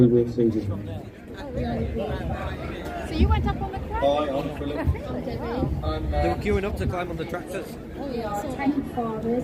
we'll see him there. So you went up on the crane? Hi, I'm Philip. They were queuing up to climb on the tractors. We are 10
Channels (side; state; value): both; identical; correlation 1.00